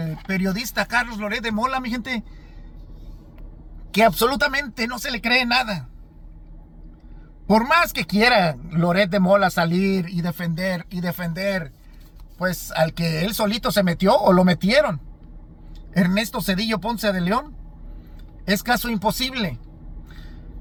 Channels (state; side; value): identical; both; correlation 1.00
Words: periodista Carlos Loret de Mola, mi gente, que absolutamente no se le cree nada. Por más que quiera Loret de Mola salir y defender, pues al que él solito se metió o lo metieron, Ernesto Zedillo Ponce de León, es caso imposible.